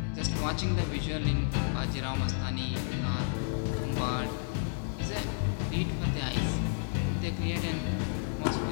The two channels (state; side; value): silent; right; 57 dB below the other